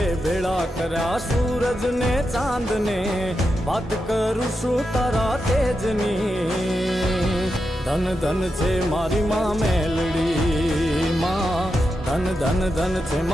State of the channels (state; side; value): normal; both; correlation 0.88